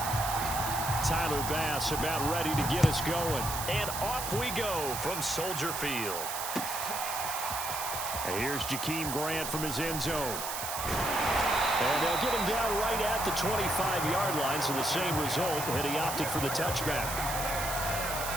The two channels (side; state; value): right; noise; hiss, 5 dB below the sound